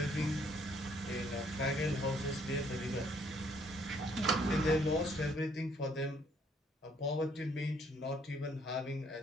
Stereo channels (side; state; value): both; normal; correlation 0.66